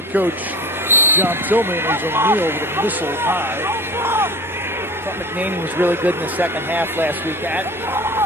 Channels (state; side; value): normal; both; correlation 0.35